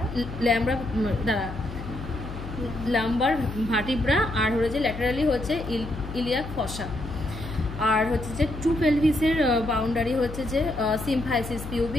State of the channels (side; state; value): left; noise; hum, 10 dB below the sound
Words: লাম্বার ভার্টিব্রা, আর হলো যে ল্যাটারালি হচ্ছে ইলিয়াক ফসা। আর হচ্ছে যে ট্রু পেলভিসের বাউন্ডারি হচ্ছে যে সিম্ফাইসিস